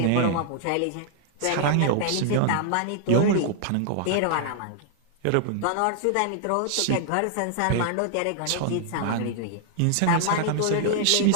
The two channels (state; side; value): different; both; correlation -0.01